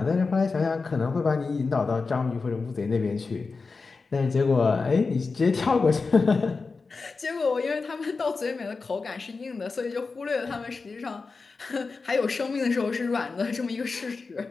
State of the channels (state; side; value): quieter; right; 4.3 dB